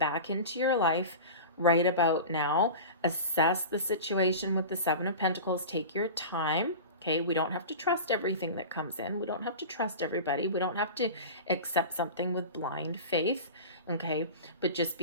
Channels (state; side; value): inverted; both; correlation -0.32